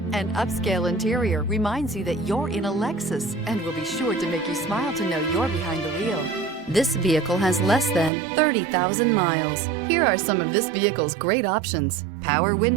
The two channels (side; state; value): left; drops out; at 8.1 s